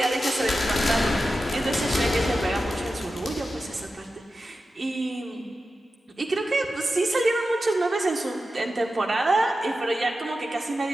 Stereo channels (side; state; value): both; normal; correlation 0.92